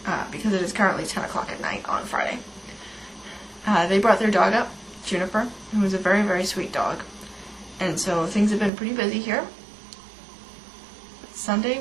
because it is currently 10 o'clock at night on Friday. They brought their dog up, Juniper, who is a very, very sweet dog. And so things have been pretty busy here.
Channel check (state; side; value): drops out; left; at 8.7 s